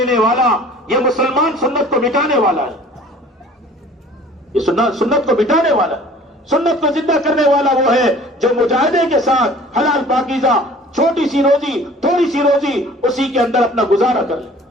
والا یہ مسلمان سنت کو مٹانے والا ہے، یہ سنت کو مٹانے والا، سنت کو زندہ کرنے والا وہ ہے جو مجاہدے کے ساتھ حلال پاکیزہ چھوٹی سی روزی تھوڑی سی روزی اسی کے اندر اپنا گزارا کر لے۔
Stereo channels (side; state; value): both; normal; correlation 0.49